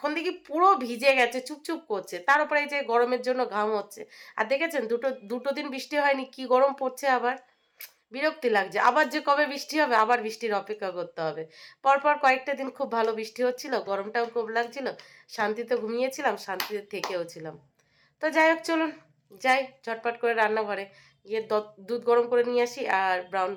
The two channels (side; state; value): both; identical; correlation 1.00